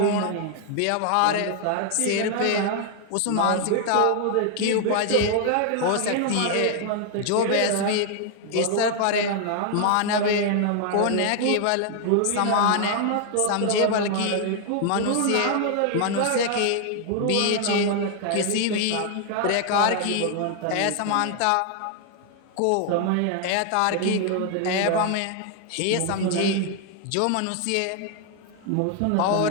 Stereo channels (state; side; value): different; both; correlation 0.00